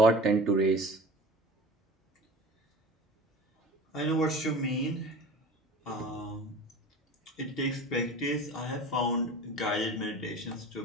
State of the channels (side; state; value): both; normal; correlation 0.38